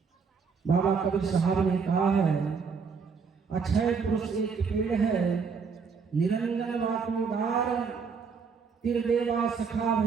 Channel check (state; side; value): quieter; left; 5.5 dB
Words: बाबा कबीर साहब ने कहा है, अक्षय पुरुष एक पेड़ है, निरंजन वातोदार, तिरदेवा सखा